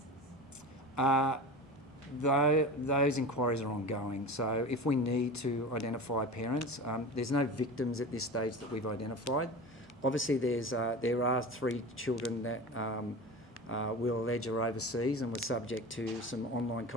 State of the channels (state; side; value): normal; both; correlation 0.31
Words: Those inquiries are ongoing. So if we need to identify parents, there's no victims at this stage that we've identified. Obviously, there are 3 children that we'll allege are overseas and were subject to some online